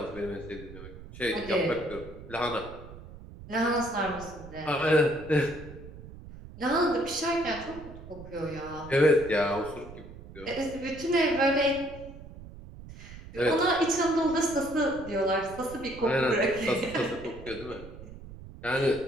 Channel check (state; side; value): noise; right; rumble, 15 dB below the sound